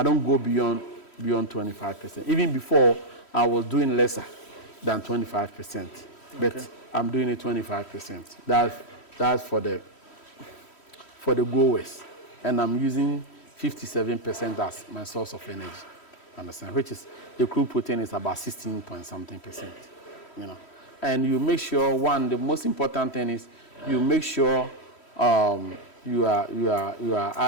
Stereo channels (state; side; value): late; right; 3.1 ms